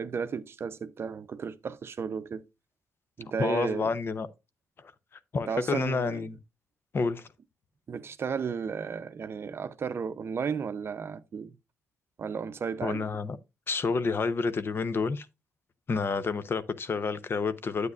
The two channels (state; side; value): normal; both; correlation 0.72